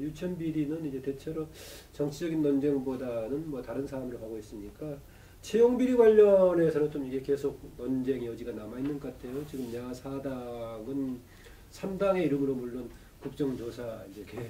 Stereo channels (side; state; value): both; identical; correlation 1.00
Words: 유치원 비리는 이제 대체로 정치적인 논쟁보다는 뭐 다른 사안으로 가고 있으니까 채용 비리 관련해서는 좀 이게 계속 논쟁 여지가 남아 있는 것 같아요. 지금 야사당은 3당의 이름으로 물론 국정조사 이제